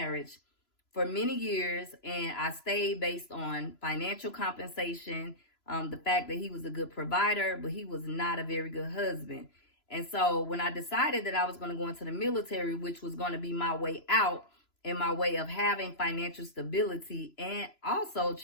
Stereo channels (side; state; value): right; late; 3.0 ms